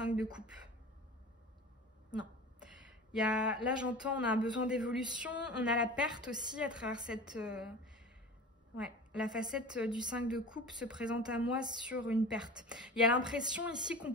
de coupe. Non. Là, j'entends, on a un besoin d'évolution. On a la perte aussi à travers cette... Ouais, la facette du 5 de coupe se présente à moi sur une perte. Il y a l'impression ici qu'on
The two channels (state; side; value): normal; both; correlation 0.35